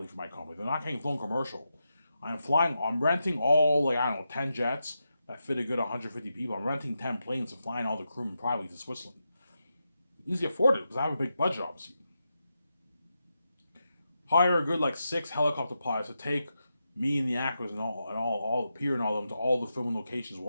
for my company. They're not getting flown commercial. I'm renting all, like, I don't know, 10 jets that fit a good 150 people. I'm renting 10 planes and flying all the crewmen privately to Switzerland. Easy afford it because I have a big budget, obviously. Hire a good like 6 helicopter pilots to take me and the actors and all the Peter and all of them to all the filming locations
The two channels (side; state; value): both; inverted; correlation -0.87